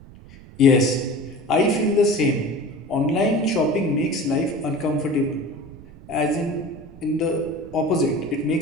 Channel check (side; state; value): right; noise; rumble, 20 dB below the sound